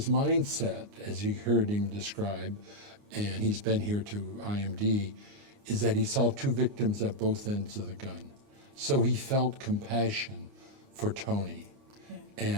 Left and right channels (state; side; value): late; left; 29 ms